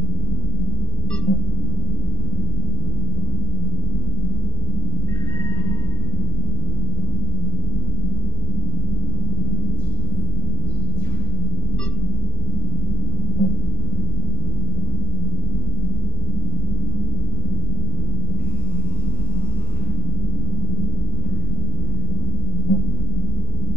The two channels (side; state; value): both; normal; correlation 0.02